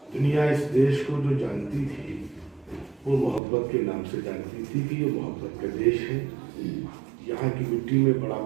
دنیا اس دیش کو جو جانتی تھی وہ محبت کے نام سے جانتی تھی کہ یہ محبت کا دیش ہے. یہاں کی مٹی میں بڑا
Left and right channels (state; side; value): drops out; left; at 3.4 s